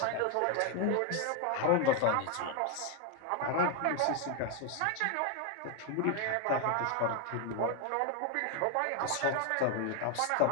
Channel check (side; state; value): both; different; correlation 0.01